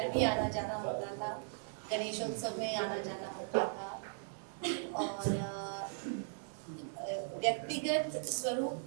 भी आना जाना होता था, गणेशोत्सव में आना जाना होता था। और व्यक्तिगत स्वरूप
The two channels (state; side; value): silent; left; digital silence